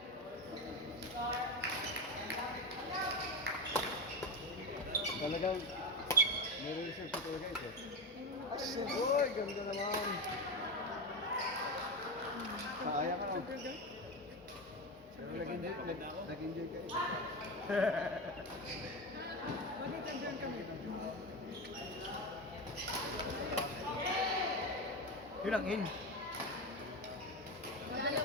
Talagang, meron research ko talaga ito. Uy, ganda naman. Kaaya ka lang. Pero nag-enjoy ka eh. Mag-champion kami. Yun ang in.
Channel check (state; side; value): normal; both; correlation 0.17